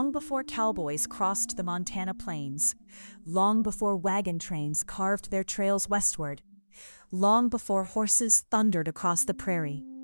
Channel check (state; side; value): inverted; both; correlation -1.00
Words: before cowboys crossed the Montana plains, long before wagon trains carved their trails westward, long before horses thundered across the prairie.